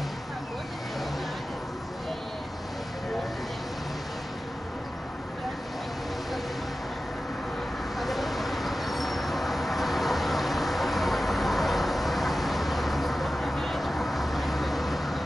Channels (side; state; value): both; normal; correlation 0.94